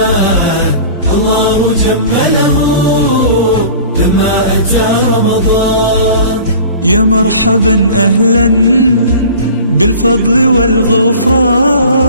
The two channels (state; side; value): inverted; both; correlation -0.42